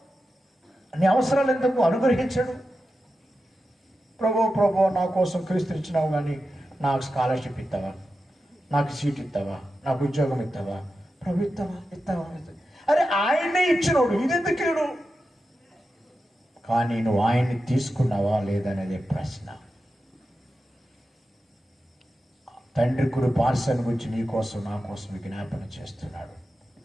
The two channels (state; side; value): normal; both; correlation 0.91